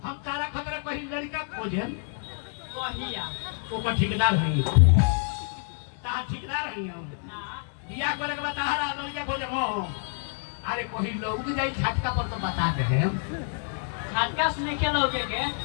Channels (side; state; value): right; silent; 56 dB below the other